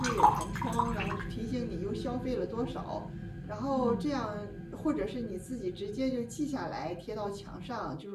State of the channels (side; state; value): both; identical; correlation 1.00